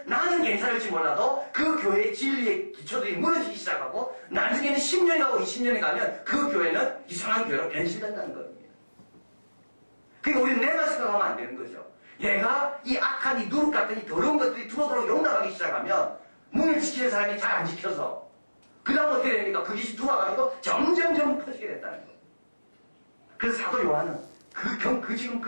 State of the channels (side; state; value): both; inverted; correlation -1.00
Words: 나는 괜찮을지 몰라도 그 교회의 진리의 기초들이 무너지기 시작하고 나중에는 10년이 가고 20년이 가면 그 교회는 이상한 교회로 변신된다는 겁니다. 그러니까 우리는 내가 생각하면 안 되는 거죠. 얘가 이 악한 이 누룩 같은 이 더러운 것들이 두루두루 용납하기 시작하면 문을 지키는 사람이 잘 안 지켜서 그 다음 어떻게 됩니까? 그 짓이 들어와가지고 점점 커지게 됐다는 겁니다. 그래서 사도 요한은 지금